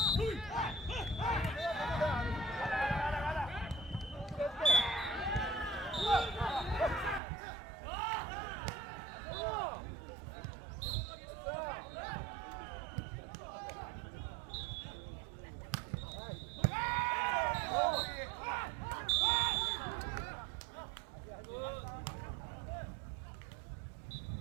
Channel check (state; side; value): drops out; left; at 7.2 s